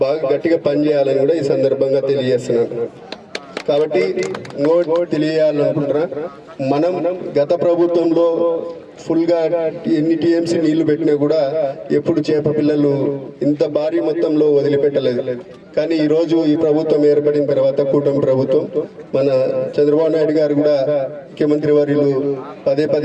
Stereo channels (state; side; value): identical; both; correlation 1.00